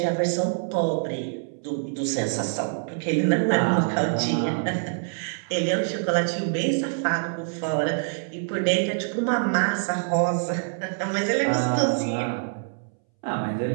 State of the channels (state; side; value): silent; left; 61 dB below the other